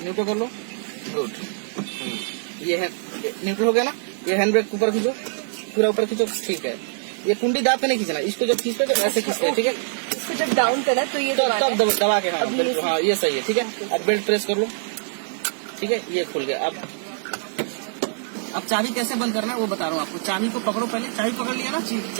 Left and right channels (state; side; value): silent; left; digital silence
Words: न्यूट्रल कर लो, गुड। ये है न्यूट्रल हो गया ना, ये हैंड ब्रेक ऊपर खींचो, पूरा ऊपर खींचो, ठीक है। ये कुंडी दाब के नहीं खींचना, इसको जब खींचते तो ऐसे खींचते हैं, ठीक है। इसको जब डाउन करा तो ये तब दबा के, हाँ ये सही है, ठीक है। अब बेल्ट प्रेस कर लो, ठीक है, ये खुल गया। अब चाबी कैसे बंद करना है वो बता रहा हूँ आपको। चाबी को पकड़ो, पहले चाबी पकड़ लिया ना,